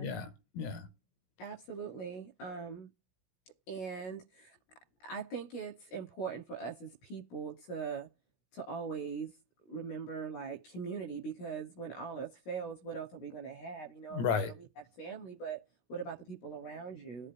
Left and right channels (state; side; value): late; right; 16 ms